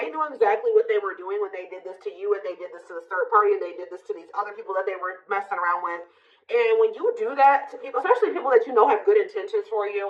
knew exactly what they were doing when they did this to you, and they did this to the third party, and they did this to these other people that they were messing around with. And when you do that to people, especially people that you know have good intentions for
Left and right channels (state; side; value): identical; both; correlation 1.00